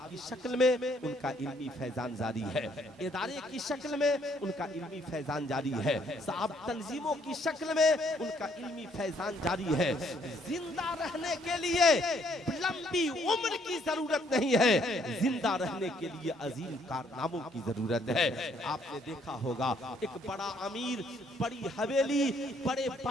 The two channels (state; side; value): normal; both; correlation 0.67